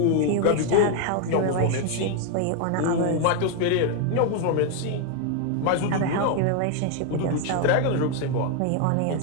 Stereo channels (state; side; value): different; both; correlation 0.01